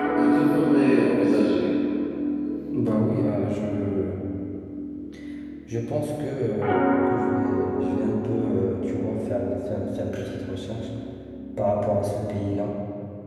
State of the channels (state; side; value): identical; both; correlation 1.00